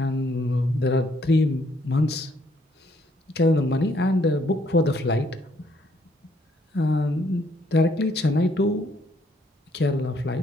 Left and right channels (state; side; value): normal; both; correlation 0.68